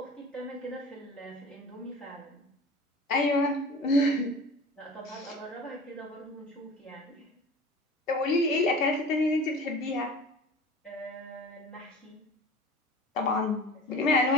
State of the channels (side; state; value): both; normal; correlation 0.39